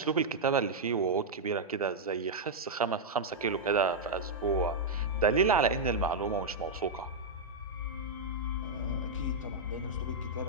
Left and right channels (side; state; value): left; quieter; 3.1 dB